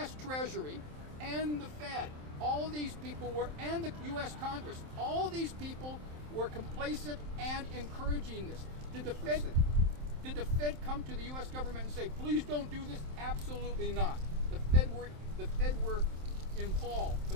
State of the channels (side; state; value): left; late; 27 ms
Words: Treasury, and the Fed. All these people were, and the U.S. Congress, all these people were complacent and encouraging this. Did the Fed come to the U.S. government and say, please don't do this? Absolutely not. The Fed were involved,